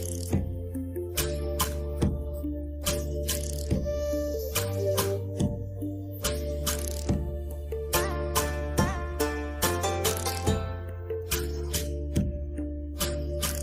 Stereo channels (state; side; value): identical; both; correlation 1.00